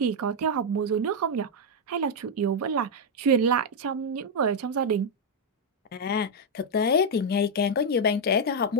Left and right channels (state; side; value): normal; both; correlation -0.01